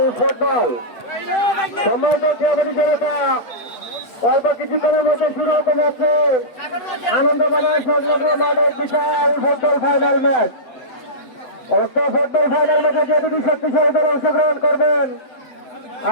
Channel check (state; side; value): late; right; 8.3 ms